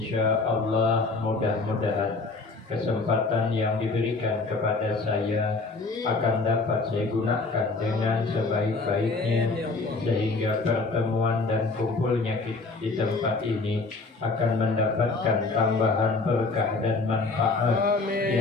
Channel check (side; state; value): right; quieter; 3.7 dB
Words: Allah mudah-mudahan kesempatan yang diberikan kepada saya akan dapat saya gunakan dengan sebaik-baiknya, sehingga pertemuan dan kumpulnya di tempat ini akan mendapatkan tambahan berkah dan manfaat